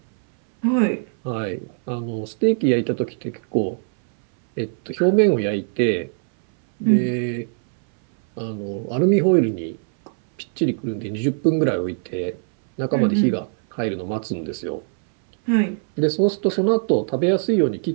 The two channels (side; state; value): left; silent; 61 dB below the other